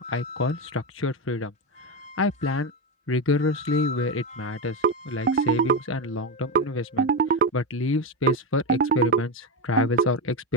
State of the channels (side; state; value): both; normal; correlation 0.11